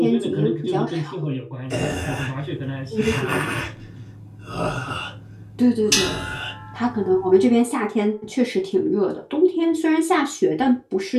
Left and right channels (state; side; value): identical; both; correlation 1.00